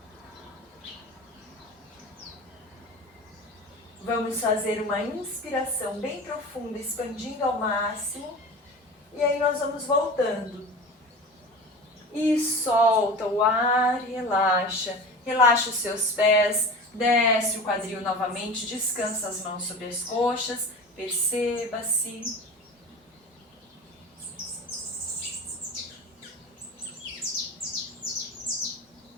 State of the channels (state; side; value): normal; both; correlation 0.33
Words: Vamos fazer uma inspiração bem profunda, expandindo ao máximo. E aí nós vamos voltando. E solta o ar, relaxa. Relaxa os seus pés, desce o quadril novamente, descansa as mãos sobre as coxas, perceba-se.